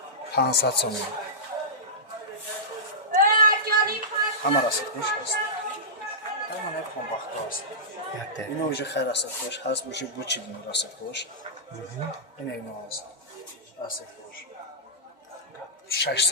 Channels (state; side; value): normal; both; correlation -0.16